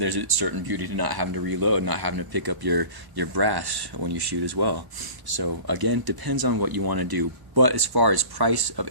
a certain beauty to not having to reload, not having to pick up your brass when you shoot as well. So again, depends on what you want to do. But as far as price of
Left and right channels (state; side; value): late; left; 1.1 ms